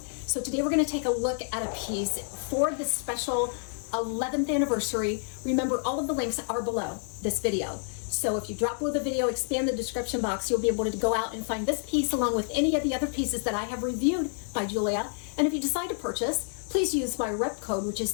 So today we're going to take a look at a piece for this special 11th anniversary. Remember, all of the links are below this video. So if you drop below the video, expand the description box, you'll be able to go out and find this piece along with any of the other pieces that I have reviewed by Jeulia. And if you decide to purchase, please use my rep code, which is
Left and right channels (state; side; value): silent; right; 59 dB below the other